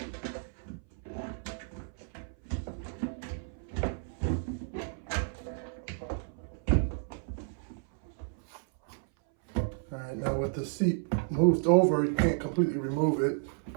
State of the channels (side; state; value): left; silent; 56 dB below the other